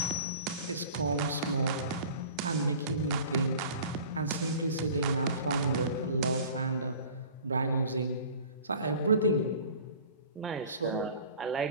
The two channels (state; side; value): inverted; both; correlation -0.44